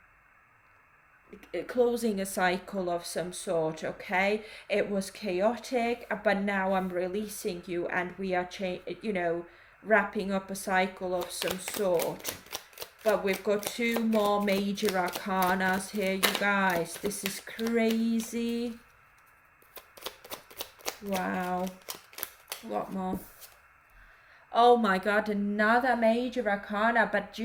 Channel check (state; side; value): identical; both; correlation 1.00